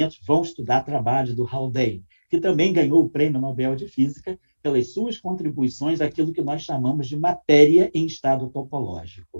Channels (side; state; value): both; inverted; correlation -1.00